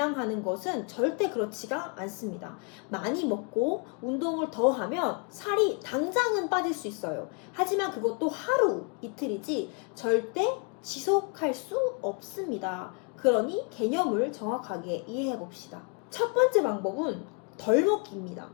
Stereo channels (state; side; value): quieter; right; 35.8 dB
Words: 것은 절대 그렇지가 않습니다. 많이 먹고 운동을 더 하면 살이 당장은 빠질 수 있어요. 하지만 그것도 하루, 이틀이지 절대 지속할 수 없습니다. 그러니 개념을 정확하게 이해해 봅시다. 첫 번째 방법은 덜 먹기입니다.